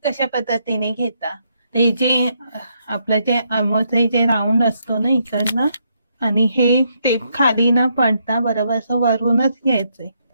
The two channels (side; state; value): both; inverted; correlation -0.76